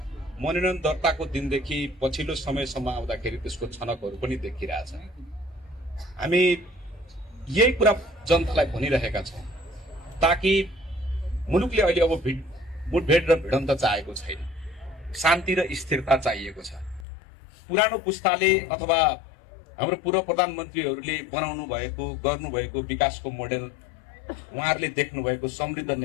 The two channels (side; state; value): right; drops out; at 17.1 s